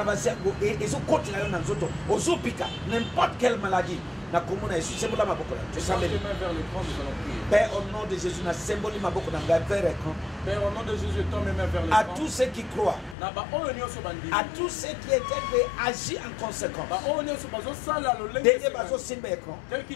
yango ezokotela yo na nzoto ozopika n'importe quelle maladie na komona Yesu sebola maboko na Tends tes mains vers l'écran, nous allons prier. Père, au nom de Jésus, na symbole maboko na ngai vers l'écran. Père, au nom de Jésus, tends mes mains vers À l'écran. tous ceux qui croient, Na ba oyo nyonso bandimi. à tous ceux qui étaient agis en conséquence. Ba oyo nyonso bazosala lolenge Dès que esengeli. bazo simba écran, Tel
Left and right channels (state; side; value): drops out; right; at 13.2 s